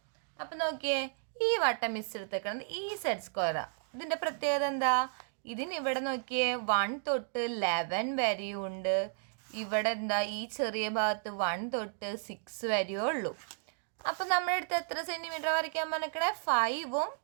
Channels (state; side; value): silent; left; digital silence